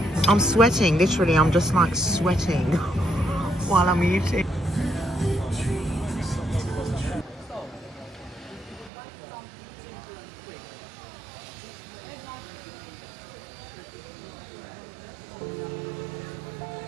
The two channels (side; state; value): left; drops out; at 8.9 s